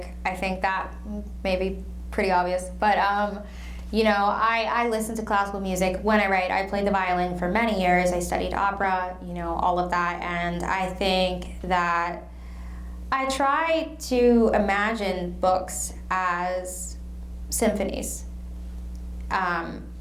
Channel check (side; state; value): both; identical; correlation 1.00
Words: I think that may be pretty obvious, but I listen to classical music when I write. I played the violin for many years. I studied opera, all of that, and I think that I try to imagine books as symphonies,